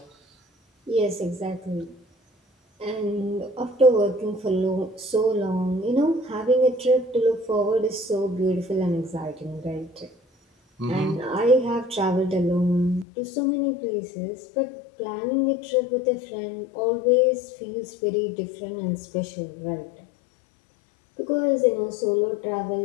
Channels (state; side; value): drops out; right; at 13.1 s